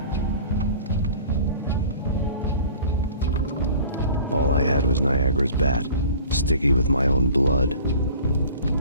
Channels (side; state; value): both; inverted; correlation -0.44